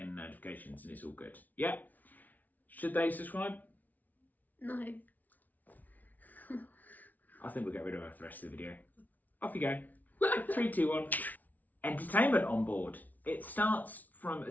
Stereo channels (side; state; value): right; late; 0.078 ms